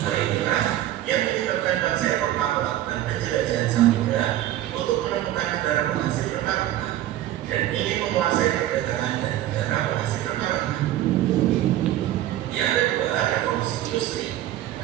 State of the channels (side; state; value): left; quieter; 13.5 dB